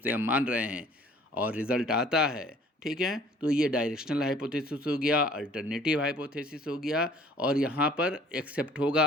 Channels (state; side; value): normal; both; correlation 0.53